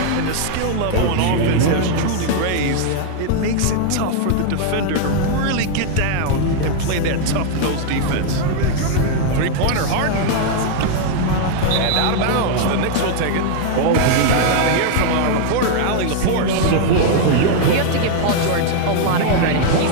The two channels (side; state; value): both; different; correlation 0.00